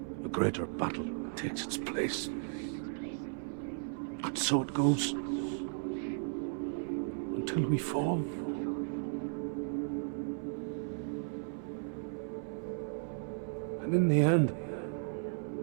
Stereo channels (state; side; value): silent; left; 54 dB below the other